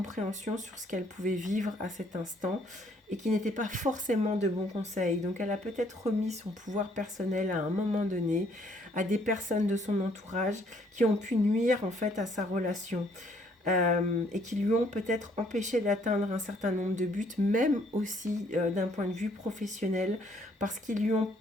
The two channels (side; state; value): both; normal; correlation 0.65